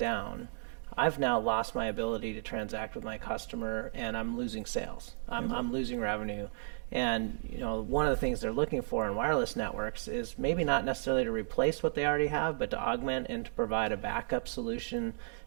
I've now lost my ability to transact with my customer, and I'm losing sales. I'm losing revenue. And one of the things they're looking for in wireless networks is maybe not necessarily to replace what they already have, but to augment and to provide a backup solution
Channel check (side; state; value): left; silent; 55 dB below the other